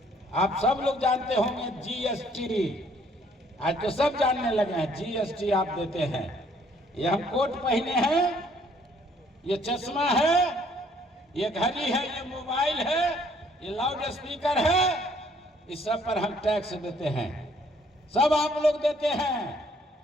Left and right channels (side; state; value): both; normal; correlation 0.63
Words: आप सब लोग जानते होंगे जीएसटी, आज तो सब जानने लगे हैं, जीएसटी आप देते हैं। ये हम कोट पहने हैं, ये चश्मा है, ये घड़ी है, ये मोबाइल है, ये लाउड स्पीकर है, इस सब पर हम टैक्स देते हैं, सब आप लोग देते हैं,